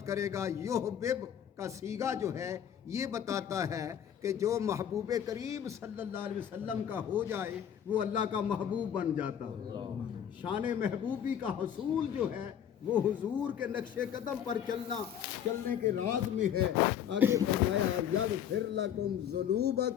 کرے گا۔ یحبب کا صیغہ جو ہے یہ بتاتا ہے کہ جو محبوب کریم صلی اللہ علیہ وسلم کا ہو جائے وہ اللہ کا محبوب بن جاتا ہے۔ شان محبوبی کا حصول جو ہے وہ حضور کے نقش قدم پر چلنے کے راز میں ہے۔ آگے فرمایا یغفر لکم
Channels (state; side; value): quieter; right; 9.3 dB